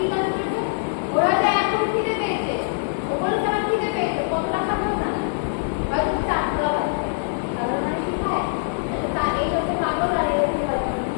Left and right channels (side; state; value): right; silent; digital silence